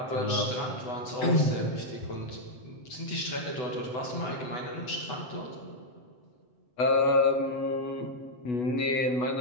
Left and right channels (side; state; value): right; late; 8.0 ms